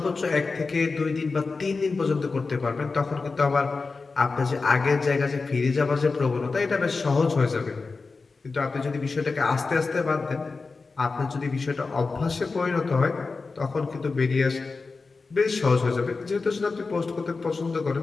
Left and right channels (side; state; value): right; quieter; 4.1 dB